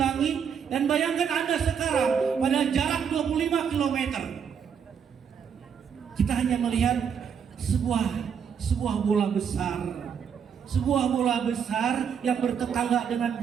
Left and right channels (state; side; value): quieter; left; 7.3 dB